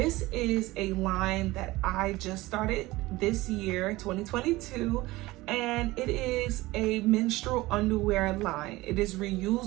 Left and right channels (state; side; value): quieter; left; 19.4 dB